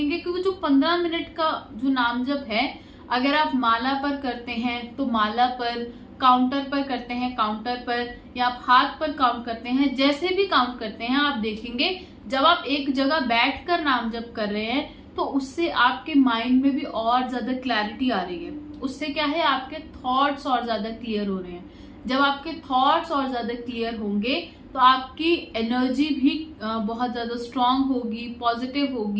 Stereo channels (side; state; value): both; identical; correlation 1.00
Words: कि वो जो 15 मिनट का जो नाम जप है, अगर आप माला पर करते हैं तो माला पर, काउंटर पर करते हैं काउंटर पर, या आप हाथ पर काउंट करते हैं, जैसे भी काउंट करते हैं, आप देखेंगे जब आप एक जगह बैठकर नाम जप कर रहे हैं तो उससे आपके माइंड में भी और ज्यादा क्लैरिटी आ रही है। उससे क्या है, आपके थॉट्स और ज्यादा क्लियर हो रहे हैं। जब आपके थॉट्स और ज्यादा क्लियर होंगे तो आपकी एनर्जी भी बहुत ज्यादा स्ट्रांग होगी, पॉजिटिव